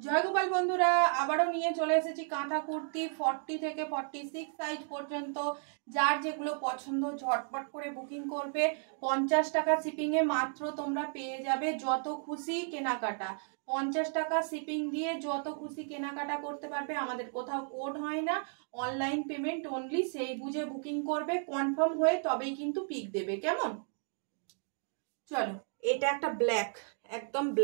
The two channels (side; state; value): left; silent; 56 dB below the other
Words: গোপাল বন্ধুরা, আবারও নিয়ে চলে এসেছি কাঁথা কুর্তি 40 থেকে 46 সাইজ পর্যন্ত। যার যেগুলো পছন্দ ঝটপট করে বুকিং করবে। 50 টাকা শিপিংয়ে মাত্র তোমরা পেয়ে যাবে যত খুশি কেনাকাটা। 50 টাকা শিপিং দিয়ে যত খুশি কেনাকাটা করতে পারবে। আমাদের কোথাও কোড হয় না, অনলাইন পেমেন্ট অনলি। সেই বুঝে বুকিং করবে, কনফার্ম হয়ে তবেই কিন্তু পিক দেবে। কেমন? চলো, এটা একটা ব্ল্যাক, একদম